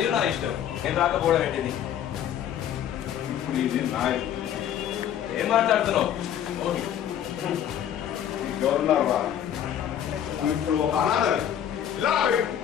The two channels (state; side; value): quieter; right; 10.1 dB